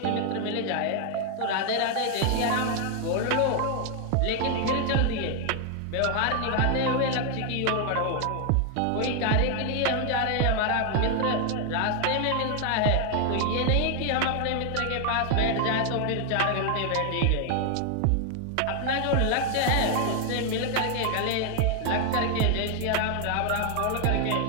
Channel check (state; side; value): different; both; correlation 0.00